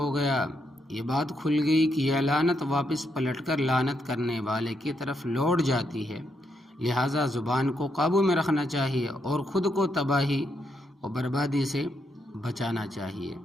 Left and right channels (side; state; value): both; normal; correlation 0.79